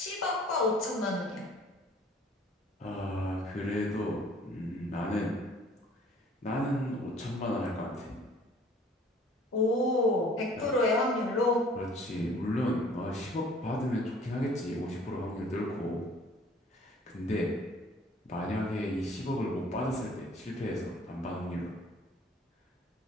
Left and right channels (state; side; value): normal; both; correlation 0.53